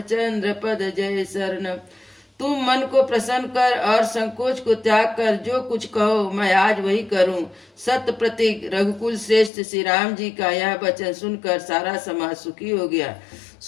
पद जय शरणम। तुम मन को प्रसन्न कर और संकोच को त्याग कर जो कुछ कहो मैं आज वही करूं। सत्य प्रतीक रघुकुल श्रेष्ठ श्री राम जी का यह वचन सुनकर सारा समाज सुखी हो गया।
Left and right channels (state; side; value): drops out; right; at 9.5 s